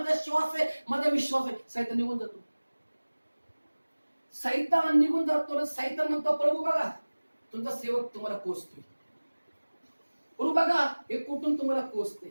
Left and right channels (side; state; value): both; inverted; correlation -1.00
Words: श्वास आहे, माझा विश्वास आहे. सैतान निघून जातो. सैतान निघून जातो. सैतान म्हणतो, प्रभू बघा तुमचा सेवक तुम्हाला कोसतोय, प्रभू बघा हे कुठून तुम्हाला कोसते,